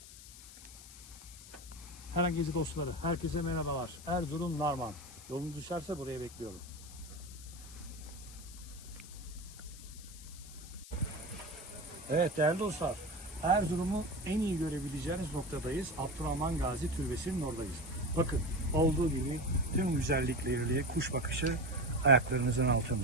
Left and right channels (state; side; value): noise; left; hiss, 16 dB below the sound